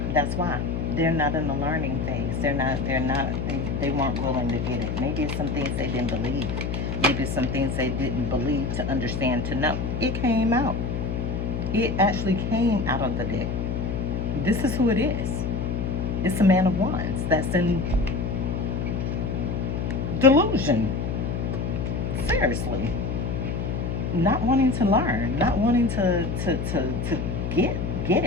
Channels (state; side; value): noise; left; hum, 2 dB below the sound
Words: That's why. They're not in the learning phase. They weren't willing to get it. Maybe it's some things they didn't believe. Maybe it's some things they didn't believe to understand, to know. It came out. It actually came out of the deck. This is who it is. It's a Man of Wands that's in delusion. Seriously. Not wanting to learn. Not wanting to get